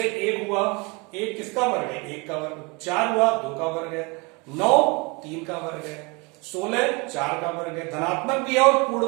1 हुआ, 1 किसका वर्ग है, 1 का वर्ग, 4 हुआ 2 का वर्ग है, 9 3 का वर्ग है, 16 4 का वर्ग है। धनात्मक भी है और पूर्ण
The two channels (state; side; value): quieter; left; 28.7 dB